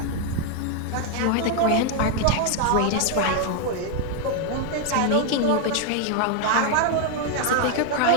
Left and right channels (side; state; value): both; different; correlation 0.00